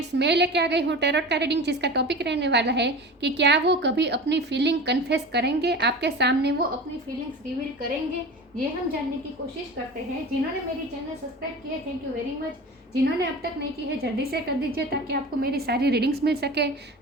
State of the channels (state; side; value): normal; both; correlation 0.33